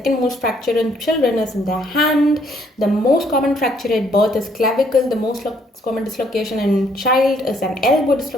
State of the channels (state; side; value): normal; both; correlation 0.67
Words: most fracture in children is in the hand. The most common fracture at birth is clavicle. The most common dislocation in child is an elbow